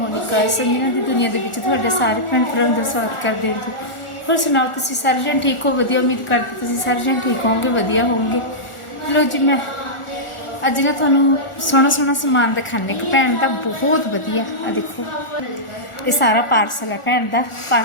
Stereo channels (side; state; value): right; late; 1.4 ms